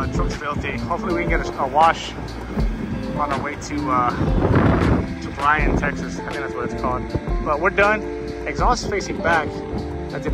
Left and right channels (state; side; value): identical; both; correlation 1.00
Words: Truck's filthy. Hopefully we can get a wash on our way to Bryan, Texas. I think that's what it's called. But we're done. Exhaust facing back. I did